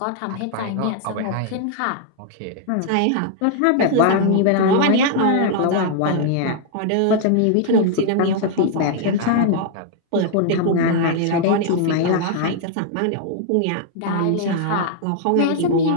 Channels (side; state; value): both; different; correlation -0.01